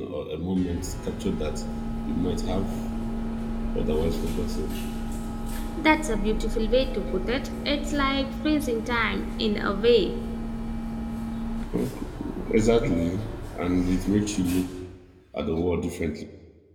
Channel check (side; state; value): both; identical; correlation 1.00